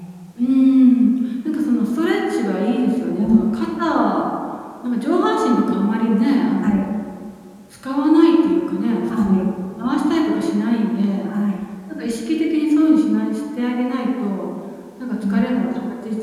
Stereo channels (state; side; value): identical; both; correlation 1.00